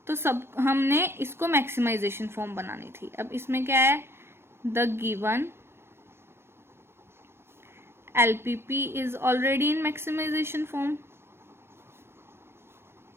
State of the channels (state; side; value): late; left; 0.12 ms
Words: तो सब हमने इसको मैक्सिमाइजेशन फॉर्म बनानी थी। अब इसमें क्या है, the given LPP is already in maximization form।